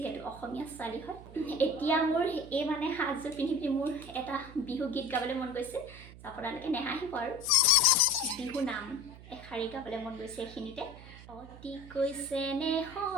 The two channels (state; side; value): noise; right; hum, 17 dB below the sound